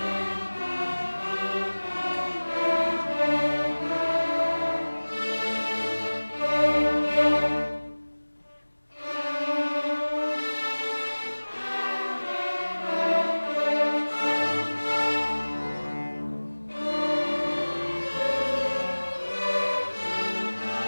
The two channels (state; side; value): inverted; both; correlation -1.00